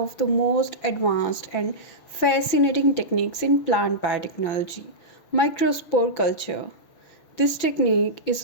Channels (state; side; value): late; right; 6.0 ms